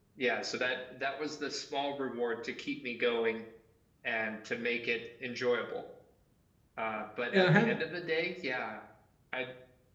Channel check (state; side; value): identical; both; correlation 1.00